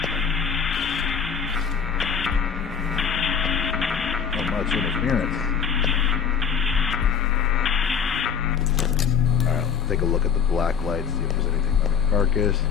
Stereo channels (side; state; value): right; quieter; 7.1 dB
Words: Interference. Alright, let's take a look at the black light, see if there's anything by the carcass.